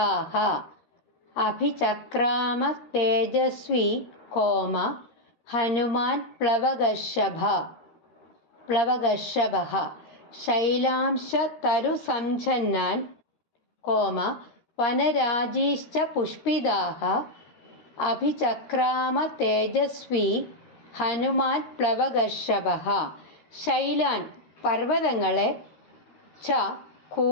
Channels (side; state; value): right; late; 13 ms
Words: അഭിചക്രാമ തേജസ്വി കോമ ഹനുമാൻ പ്ലവഗർഷഭഃ. ശൈലാംശ തരുസംച്ഛന്നാൻ കോമ വനരാജീശ്ച പുഷ്പിതാഃ അഭിചക്രാമ തേജസ്വി ഹനുമാൻ പ്ലവഗർഷഭഃ. ശൈലാൻ പർവ്വതങ്ങളെ, ച